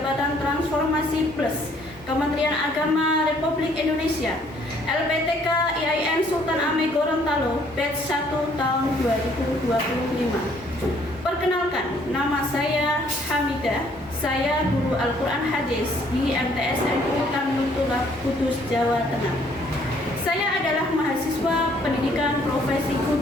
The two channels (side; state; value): right; noise; hum, 24 dB below the sound